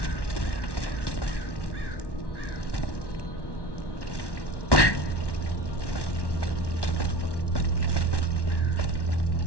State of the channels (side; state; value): right; late; 1.1 ms